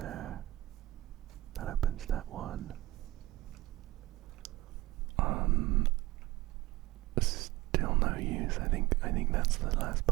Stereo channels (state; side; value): quieter; left; 18.1 dB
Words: That opens that one. Still no use. I think that's the last